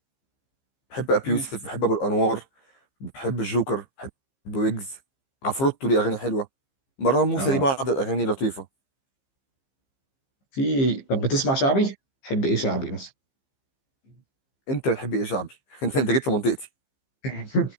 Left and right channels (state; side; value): late; right; 15 ms